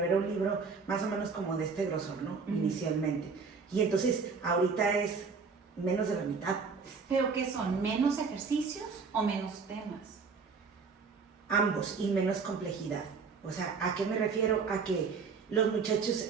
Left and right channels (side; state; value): left; quieter; 5.1 dB